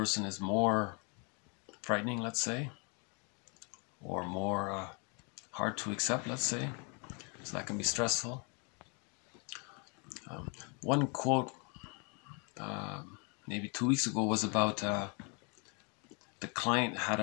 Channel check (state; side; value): quieter; right; 33.4 dB